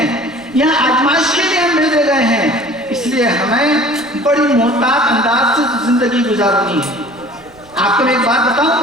یہاں آزمائش کے لیے ہم بھیجے گئے ہیں، اس لیے ہمیں بڑی محتاط انداز سے زندگی گزارنی ہے۔ آپ کو میں ایک بات بتاؤں،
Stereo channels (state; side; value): noise; right; rumble, 28 dB below the sound